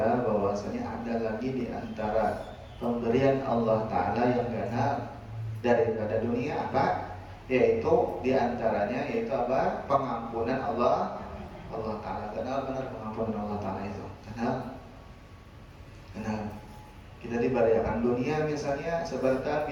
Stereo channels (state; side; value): identical; both; correlation 1.00